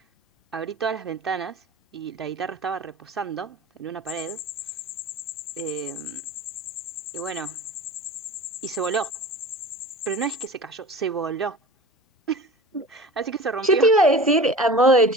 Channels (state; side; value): normal; both; correlation 0.37